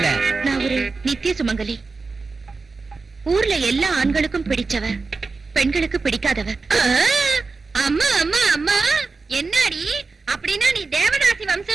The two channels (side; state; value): left; quieter; 4.2 dB